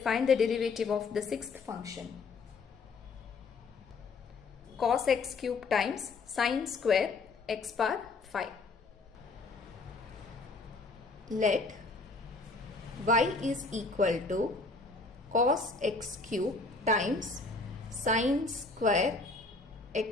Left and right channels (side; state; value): right; quieter; 3.9 dB